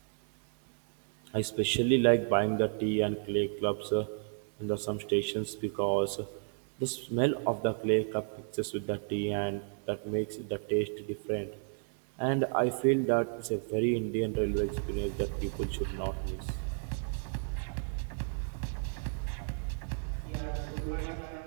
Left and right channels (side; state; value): left; silent; 56 dB below the other